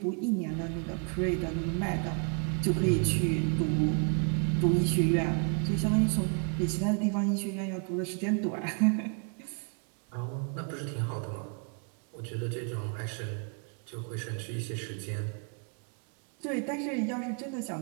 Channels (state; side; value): quieter; left; 39.5 dB